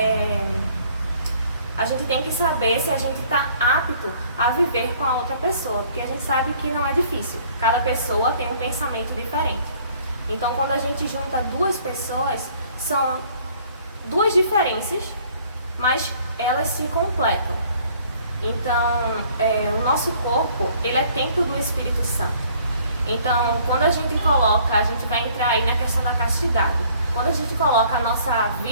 a gente tem que saber se a gente está apto a viver com a outra pessoa, porque a gente sabe que não é difícil. Cada pessoa tem um pensamento diferente. Então, quando a gente junta 2 pessoas, são 2 diferenças, mas elas se completam. Então, o nosso corpo, ele é templo do Espírito Santo. Então, quando a gente vai entrar aí na questão da castidade. Quando a gente coloca a nossa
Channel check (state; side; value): inverted; both; correlation -0.58